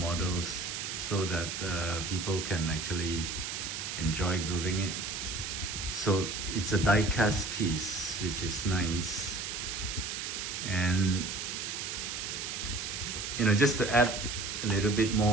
so that people can actually enjoy building it. So it's a die-cast piece, which is nice. And you know, just to add a little bit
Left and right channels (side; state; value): right; noise; hiss, 4 dB below the sound